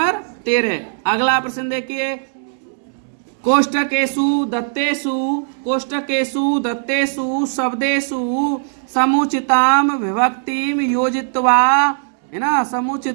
13 अगला प्रश्न देखिए, कोष्टकेषु दत्तेषु शब्देषु समुचिताम विभक्तिम योजित्वा, है ना,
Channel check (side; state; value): left; silent; 67 dB below the other